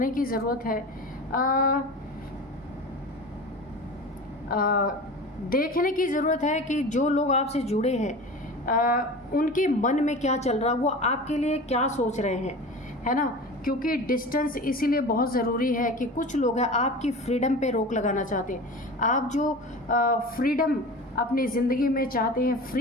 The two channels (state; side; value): normal; both; correlation 0.34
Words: की ज़रूरत है। देखने की ज़रूरत है कि जो लोग आपसे जुड़े हैं उनके मन में क्या चल रहा है, वो आपके लिए क्या सोच रहे हैं, है ना। क्योंकि डिस्टेंस इसीलिए बहुत ज़रूरी है कि कुछ लोग हैं आपकी फ्रीडम पे रोक लगाना चाहते हैं। आप जो फ्रीडम अपनी ज़िंदगी में चाहते हैं,